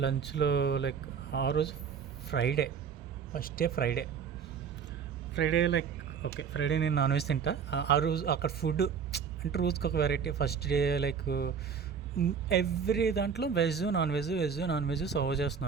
లంచ్లో లైక్ ఆ రోజు Friday, first day Friday like okay Friday నేను నాన్ వెజ్ తింటా. ఆ రోజు అక్కడ ఫుడ్ అంటే రోజుకి ఒక variety. First day like every దాంట్లో వెజ్ నాన్ వెజ్ సర్వ్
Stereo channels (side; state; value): left; quieter; 6.8 dB